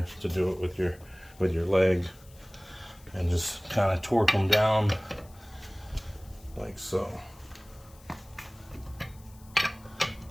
to do it with your leg, and just kind of torque them down like so.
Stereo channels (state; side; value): noise; left; hiss, 25 dB below the sound